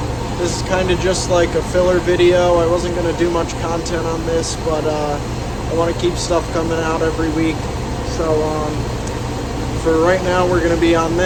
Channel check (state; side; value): identical; both; correlation 1.00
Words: This is kind of just like a filler video. I wasn't going to do much content on this, but I want to keep stuff coming out every week. So for right now, we're going to be on